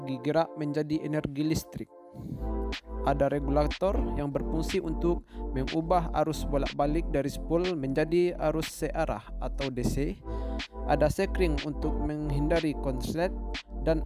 gerak menjadi energi listrik. Ada regulator yang berfungsi untuk mengubah arus bolak-balik dari spool menjadi arus searah atau DC. Ada sekring untuk menghindari konslet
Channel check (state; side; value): identical; both; correlation 1.00